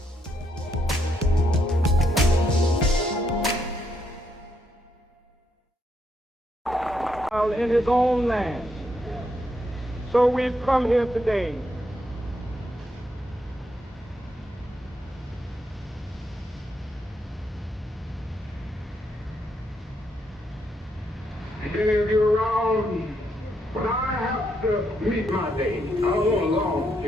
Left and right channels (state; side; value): normal; both; correlation 0.77